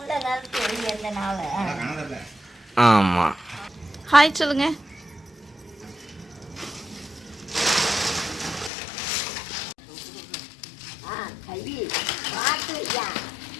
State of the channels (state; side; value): drops out; right; at 8.7 s